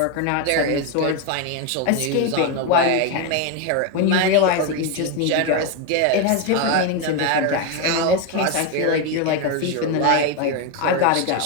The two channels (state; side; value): different; both; correlation 0.02